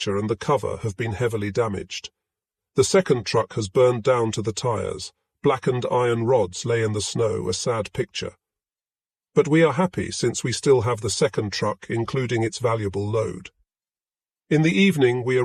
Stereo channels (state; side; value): identical; both; correlation 1.00